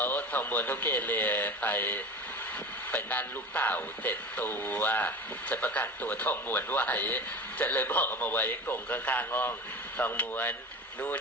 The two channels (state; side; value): normal; both; correlation 0.33